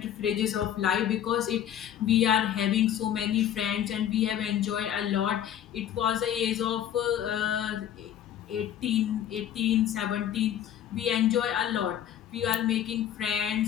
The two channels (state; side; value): quieter; right; 10.4 dB